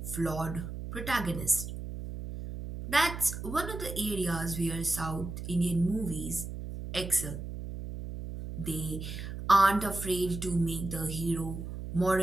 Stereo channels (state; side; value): noise; right; hum, 7 dB below the sound